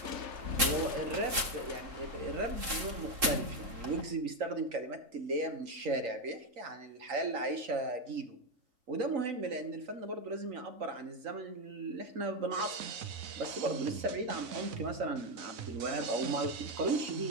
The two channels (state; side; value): late; left; 3.7 ms